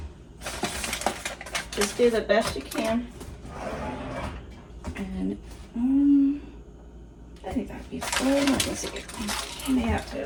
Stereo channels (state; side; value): identical; both; correlation 1.00